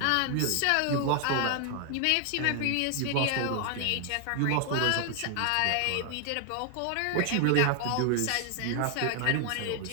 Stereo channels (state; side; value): different; both; correlation 0.00